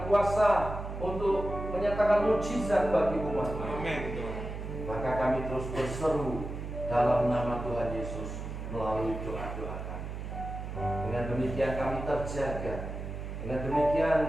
kuasa untuk menyatakan mujizat bagi umat. Amin, Tuhan. Maka kami terus berseru dalam nama Tuhan Yesus melalui doa-doa kami. Dengan demikian kami terjaga. Dengan demikian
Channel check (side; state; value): right; noise; hum, 7 dB below the sound